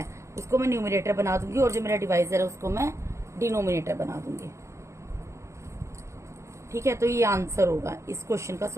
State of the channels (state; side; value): late; left; 0.14 ms